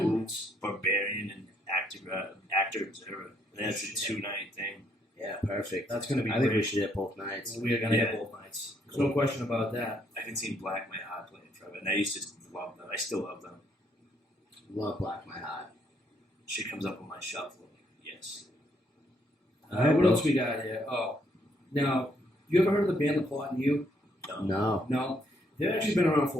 Barbarian, and Actor Observer. That's a 2-night thing. Yeah, perfect. That's going to be I think we great. should hit both nights. We are going to Yeah. hit both nights. There's no question about that. I haven't seen Black My Heart play in forever, and I used to love them. I still love them. Love Black My Heart. Shit comes up on my shuffle. Yes. What else we got here? Oh, now, you ever heard of the band The Plot and You? No. No. They've actually been around for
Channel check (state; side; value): normal; both; correlation 0.72